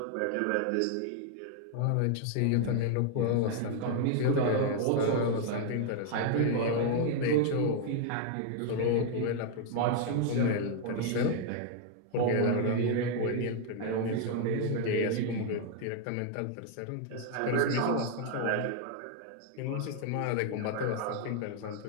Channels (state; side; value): different; both; correlation 0.00